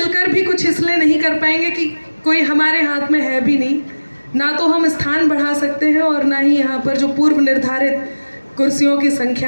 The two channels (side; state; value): both; inverted; correlation -1.00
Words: भी कुछ इसलिए नहीं कर पाएंगे कि कोई हमारे हाथ में है भी नहीं, ना तो हम स्थान बढ़ा सकते हैं और ना ही यहाँ पर जो पूर्व निर्धारित कुर्सियों की